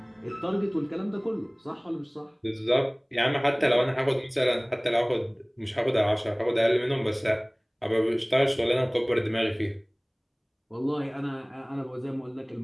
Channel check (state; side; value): identical; both; correlation 1.00